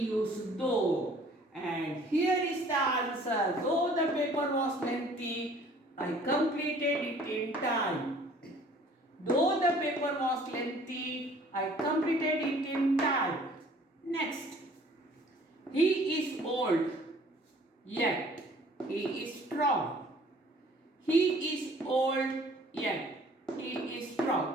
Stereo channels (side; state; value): both; normal; correlation 0.54